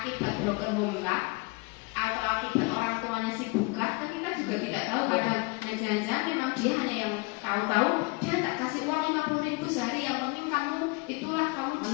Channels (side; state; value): right; quieter; 27.0 dB